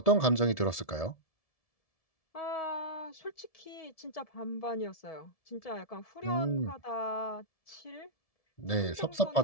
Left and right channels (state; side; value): late; right; 1.7 ms